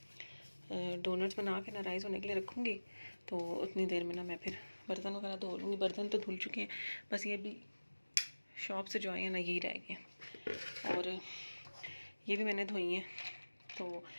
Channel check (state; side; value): inverted; both; correlation -1.00